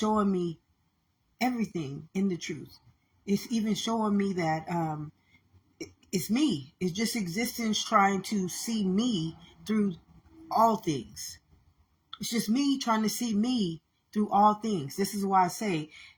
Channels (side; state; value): both; identical; correlation 1.00